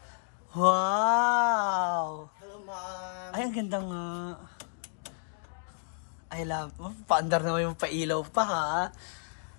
Wow! Hello, ma'am. Ay, ang ganda nga. I love, paandar naman yung pailaw pa ha.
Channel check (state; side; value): silent; right; digital silence